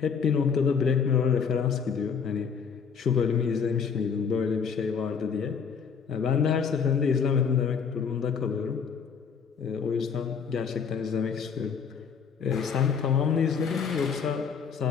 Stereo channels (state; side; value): quieter; right; 6.4 dB